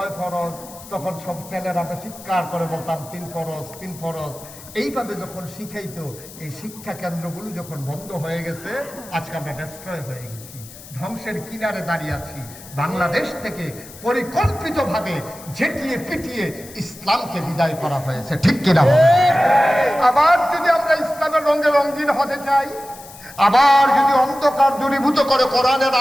ফরজ, তখন সব ছেলেরা আমরা চিৎকার করে বলতাম 3 ফরজ 3 ফরজ। এইভাবে যখন শিখাইতো, এই শিক্ষা কেন্দ্রগুলো যখন বন্ধ হয়ে গেছে, আজকে আমরা ডেস্ট্রয় হয়ে গেছি, ধ্বংসের কিনারে দাঁড়িয়ে আছি। বাংলাদেশ থেকে পরিকল্পিতভাবে ঝেঁটিয়ে পিটিয়ে ইসলামকে বিদায় করা হয়েছে, ঠিক কিনা? আবার যদি আমরা ইসলামের রঙে রঙিন হতে চাই, আবার যদি অন্ধকার দূরীভূত করে কোরআনের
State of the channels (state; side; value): noise; left; hiss, 18 dB below the sound